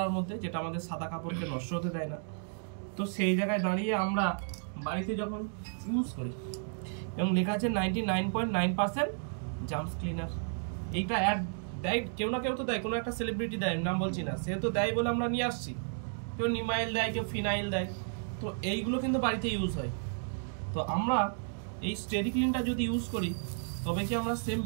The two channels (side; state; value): left; silent; digital silence